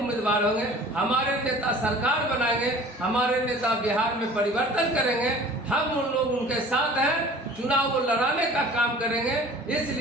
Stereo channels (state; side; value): normal; both; correlation 0.46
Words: होंगे। हमारे नेता सरकार बनाएंगे, हमारे नेता बिहार में परिवर्तन करेंगे। हम उन लोग उनके साथ हैं, चुनाव को लड़ाने का काम करेंगे।